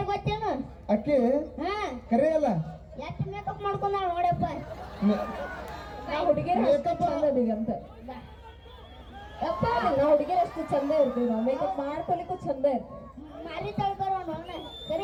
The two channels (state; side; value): identical; both; correlation 1.00